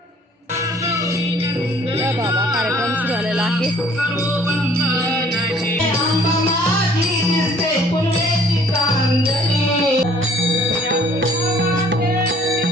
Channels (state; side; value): normal; both; correlation 0.56